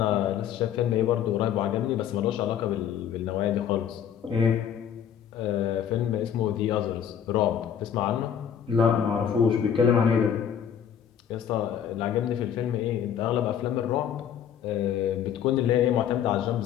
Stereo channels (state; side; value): quieter; right; 8.9 dB